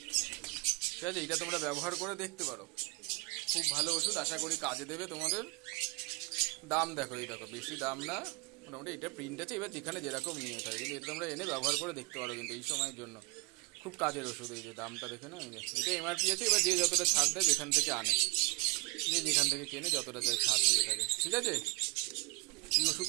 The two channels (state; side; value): quieter; left; 28.2 dB